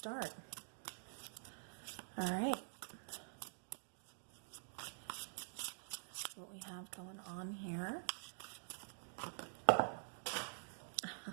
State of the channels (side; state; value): left; silent; digital silence